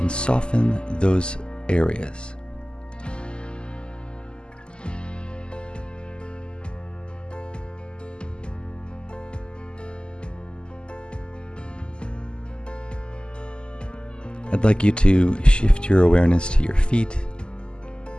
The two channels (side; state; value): right; late; 0.049 ms